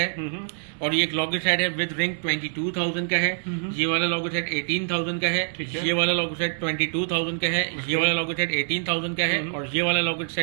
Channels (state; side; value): silent; left; 62 dB below the other